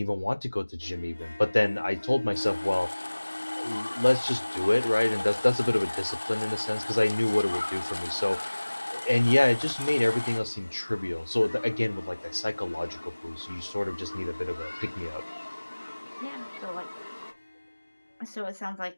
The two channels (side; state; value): both; inverted; correlation -1.00